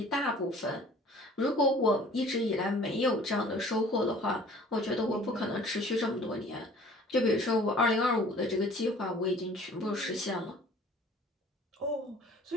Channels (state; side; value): normal; both; correlation 0.50